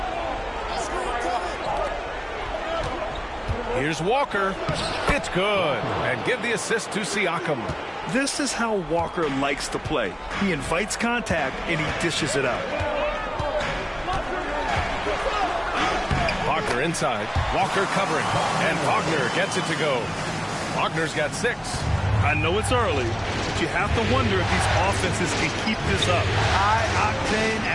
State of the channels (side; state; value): both; identical; correlation 1.00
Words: Here's Walker. It's good. And give the assist to Siakam. This is how Walker likes to play. He invites contact and he dishes it out. Wagner inside. Walker covering. And Wagner gets it to go. Wagner's got 6. I know it's early, but you have to wonder if these offenses can keep this up. High-octane